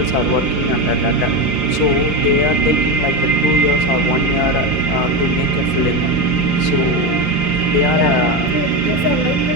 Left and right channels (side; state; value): right; late; 5.7 ms